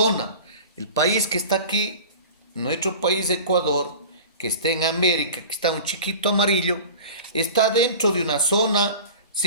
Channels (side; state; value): both; inverted; correlation -0.38